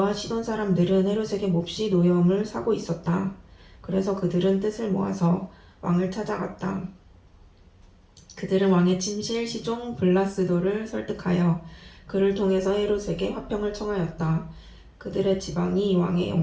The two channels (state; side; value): identical; both; correlation 1.00